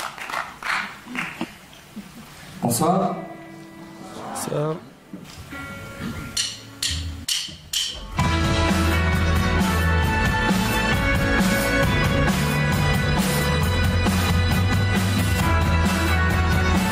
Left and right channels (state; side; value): identical; both; correlation 1.00